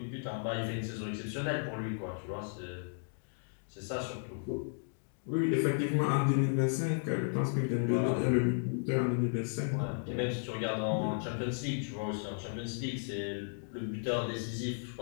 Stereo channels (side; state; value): right; silent; digital silence